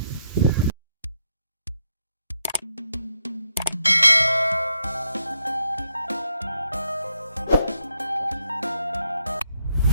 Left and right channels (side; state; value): both; inverted; correlation -0.76